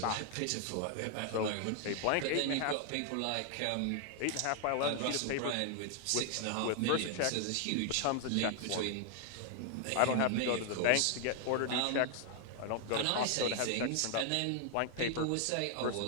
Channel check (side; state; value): both; different; correlation 0.00